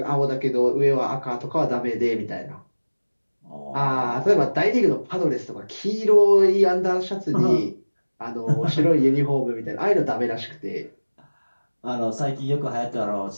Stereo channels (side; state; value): both; inverted; correlation -1.00